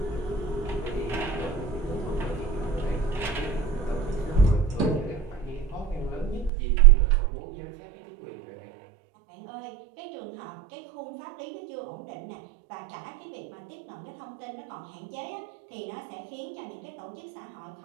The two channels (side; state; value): left; drops out; at 6.5 s